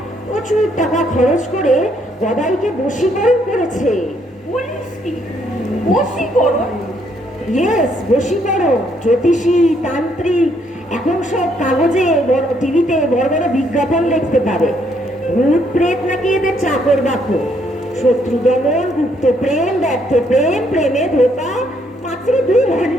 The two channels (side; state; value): both; normal; correlation 0.70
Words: প্রচুর টাকা খরচ করে গদাইকে বশীকরণ করেছে। বলিস কি? বশীকরণ? ইয়েস, বশীকরণ। জ্যোতিষী, তান্ত্রিক, এখন সব কাগজে টিভিতে বড় বড় বিজ্ঞাপন দেখতে পাবে। ভূত প্রেত নাকি এদের চাকর বাকর। শত্রু দমন, গুপ্ত প্রেম, ব্যর্থ প্রেম, প্রেমে ধোকা, মাত্র 2